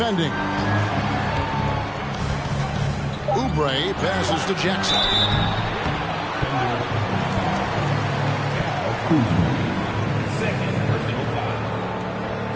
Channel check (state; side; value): identical; both; correlation 1.00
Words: Oubre passes to Jackson. Second personal foul.